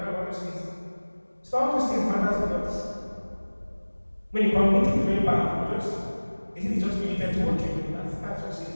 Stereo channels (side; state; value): both; inverted; correlation -1.00